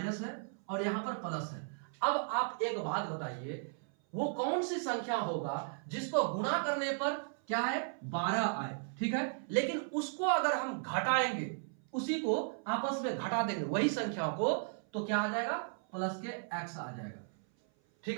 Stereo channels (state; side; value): silent; left; 54 dB below the other